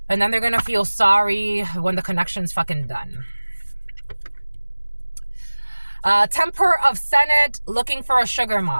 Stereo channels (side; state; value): both; inverted; correlation -1.00